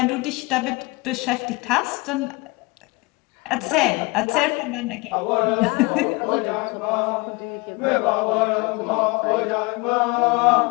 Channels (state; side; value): quieter; right; 24.9 dB